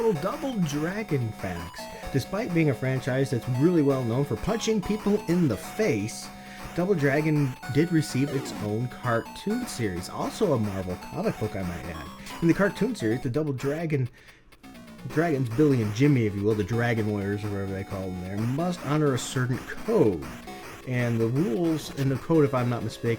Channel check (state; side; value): identical; both; correlation 1.00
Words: Double Dragon facts. Despite being a franchise that's really well known for punching people in the face, Double Dragon did receive its own cartoon series. Also a Marvel comic book, I might add. In the cartoon series, the Double Dragons, Billy and Jimmy, if you will, the Dragon Warriors or whatever they call them there, must honor a certain code. And the rules in the code, if I'm not